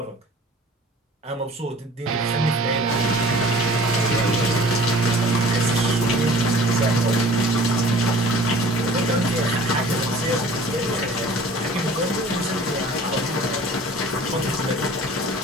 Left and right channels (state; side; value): normal; both; correlation 0.47